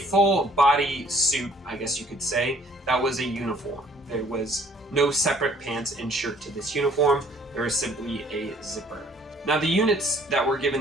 body suit, I guess you could say, that was a uniform. There was no separate pants and shirt to this uniform, there was simply a zipper. Now the units that were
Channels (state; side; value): normal; both; correlation 0.59